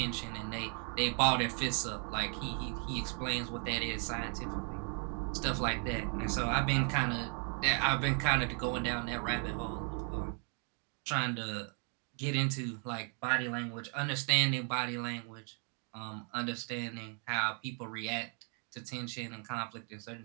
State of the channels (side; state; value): left; quieter; 36.8 dB